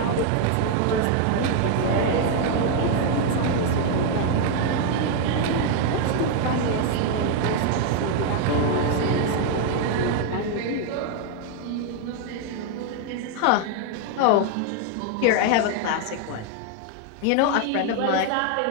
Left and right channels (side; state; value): both; different; correlation 0.01